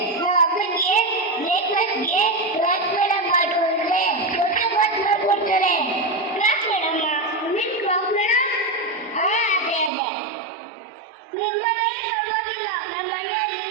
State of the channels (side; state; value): left; drops out; at 9.9 s